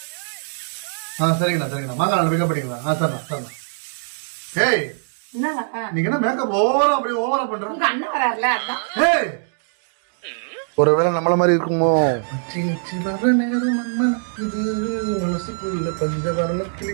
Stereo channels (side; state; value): left; silent; digital silence